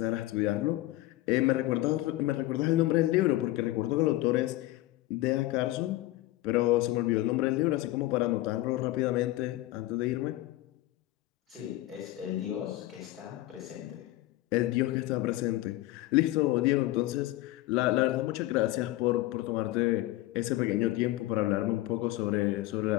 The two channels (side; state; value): right; quieter; 17.3 dB